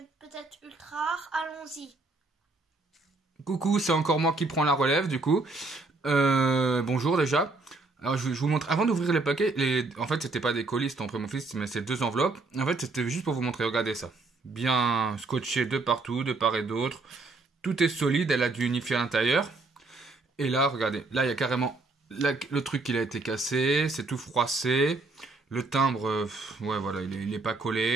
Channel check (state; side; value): quieter; left; 3.5 dB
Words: peut-être ultra rares. Allons-y. Coucou, c'est encore moi qui prends la relève du coup. Bonjour déjà. Alors je vous montre, avant d'ouvrir les paquets, en fait c'était pas des colis, c'était pour mon fils, mais c'est 2 enveloppes. En fait c'était juste pour vous montrer, regardez ça. Bien scotché de partout, de part et d'autre. Tout est solide, elle a dû unifier à l'intérieur. Et là, regardez, là il y a carrément le truc qui a été cassé, c'est tout froissé. Le timbre, ouais voilà, il est pas